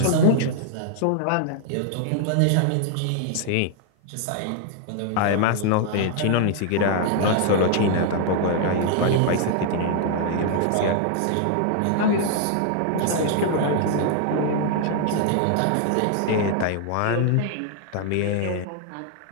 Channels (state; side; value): different; both; correlation 0.00